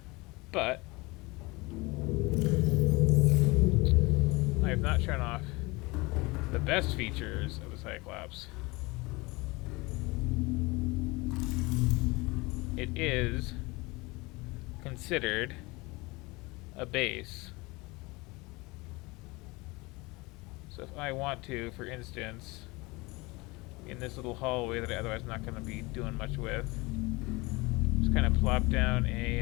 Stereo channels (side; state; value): right; quieter; 24.2 dB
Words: but I have not shown off the best features of the Cyclops. It is considered a base. So if I want to, for instance, in this little hallway that I otherwise not going to be doing much with, just kind of plop down